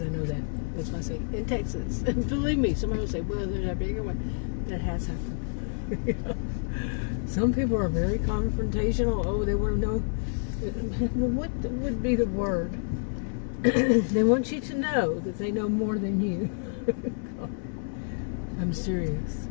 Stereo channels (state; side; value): silent; right; 59 dB below the other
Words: I know that. That's why I say in Texas. And believe me, somebody will say, well, there's a bigger one. That has happened. Some people are very confrontational. Oh, they want to know. Well, what would be the word? They want you to know that they know more than you. I'm serious.